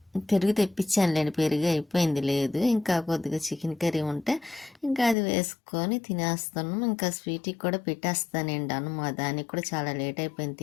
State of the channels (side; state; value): right; drops out; at 5.2 s